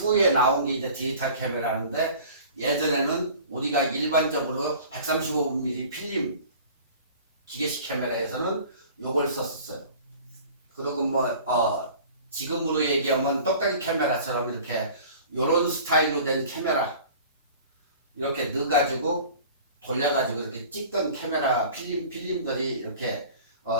나온 게 이제 디지털 카메라인데, 예전에는 우리가 일반적으로 135mm 필름 기계식 카메라에서는 요걸 썼었어요. 그리고 뭐 지금으로 얘기하면 똑딱이 카메라처럼 이렇게 요런 스타일로 된 카메라 이렇게 넣어가지고 돌려가지고 이렇게 찍던 카메라 필름들이 이렇게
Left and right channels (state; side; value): inverted; both; correlation -0.45